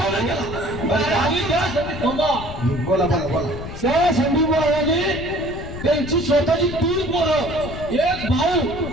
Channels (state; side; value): noise; left; rumble, 10 dB below the sound